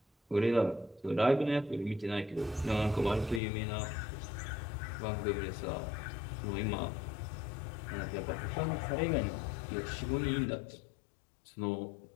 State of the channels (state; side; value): drops out; right; at 3.4 s